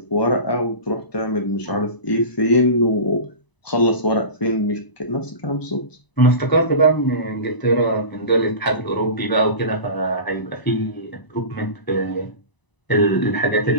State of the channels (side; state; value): right; late; 1.0 ms